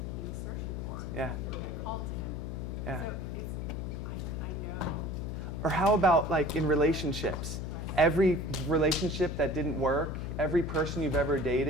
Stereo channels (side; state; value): left; noise; hum, 4 dB below the sound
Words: he was searching for. Yeah. It called to him. Yeah. So it's, I know. Or how about like in relationships? Every relationship that didn't work, every person you've ever